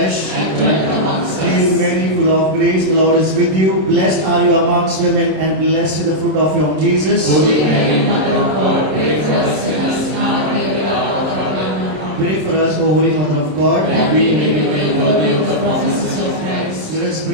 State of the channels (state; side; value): late; left; 27 ms